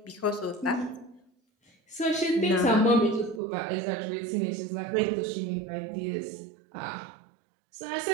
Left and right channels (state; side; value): drops out; left; at 3.4 s